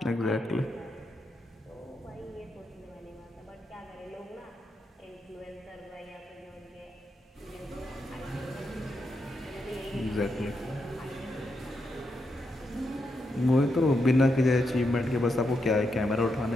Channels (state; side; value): normal; both; correlation 0.83